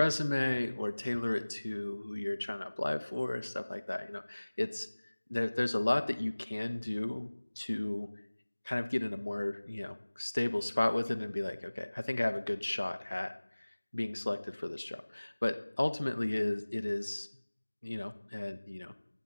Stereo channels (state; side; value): inverted; both; correlation -1.00